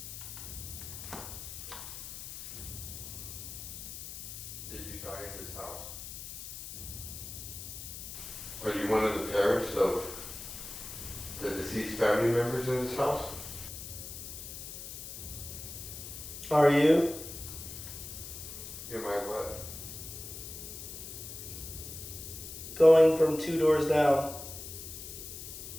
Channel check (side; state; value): left; noise; hiss, 10 dB below the sound